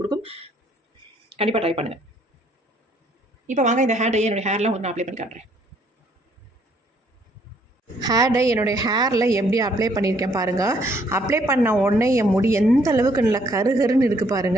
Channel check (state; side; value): normal; both; correlation 0.66